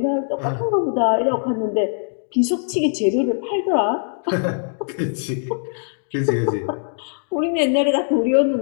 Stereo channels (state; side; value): silent; right; 65 dB below the other